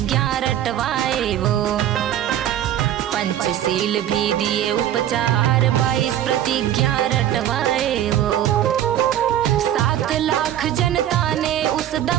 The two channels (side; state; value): left; quieter; 11.4 dB